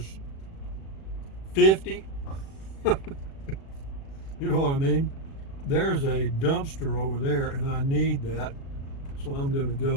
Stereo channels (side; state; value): right; late; 36 ms